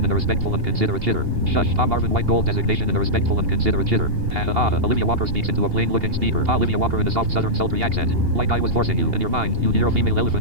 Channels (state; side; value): late; left; 2.8 ms